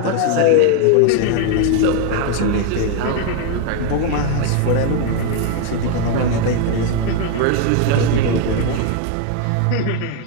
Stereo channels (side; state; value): both; different; correlation 0.01